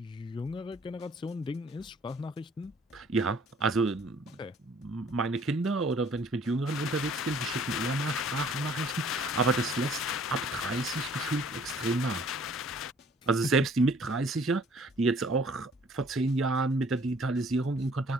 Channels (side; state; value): both; normal; correlation 0.57